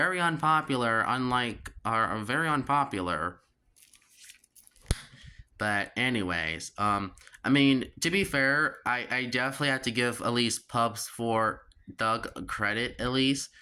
unpopular, are very unpopular. But anyways, I mean, to be fair, I definitely have to give at least Pubs for Doug credit. At least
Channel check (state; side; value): identical; both; correlation 1.00